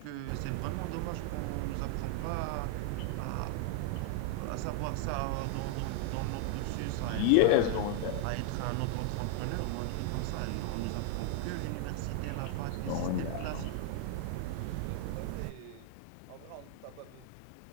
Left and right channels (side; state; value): both; different; correlation 0.00